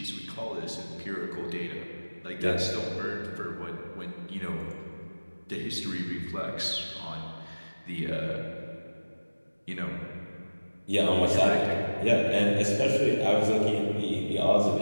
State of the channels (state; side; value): inverted; both; correlation -1.00